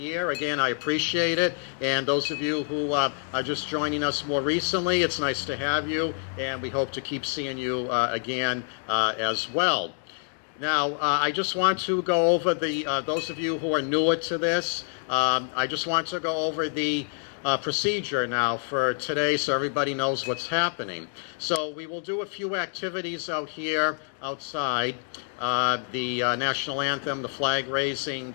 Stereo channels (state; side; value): silent; right; 60 dB below the other